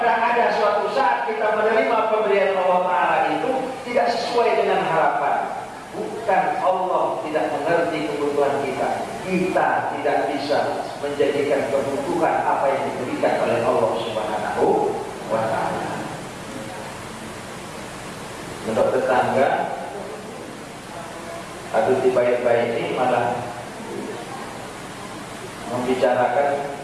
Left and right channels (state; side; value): identical; both; correlation 1.00